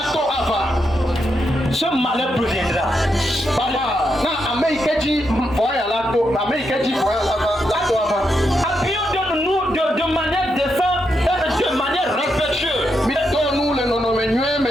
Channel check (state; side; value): normal; both; correlation 0.82